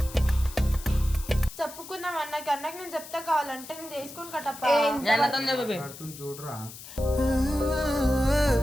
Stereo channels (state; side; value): noise; left; hiss, 15 dB below the sound